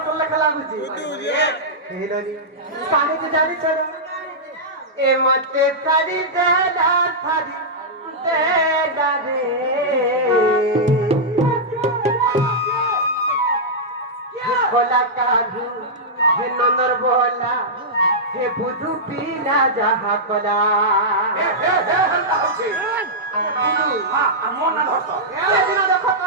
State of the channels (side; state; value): both; normal; correlation -0.10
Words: তোলে খেলা বুঝি হে নানি কানে যে জানি চল এ মতে সারি দে দা সারি দে দা রে बोला काढू हे नंदर बोला हे बुधू पीला जहा कोला হেলতা হচ্ছে হ্যাঁ আর মন না ধরতো সেদিন দেখো তো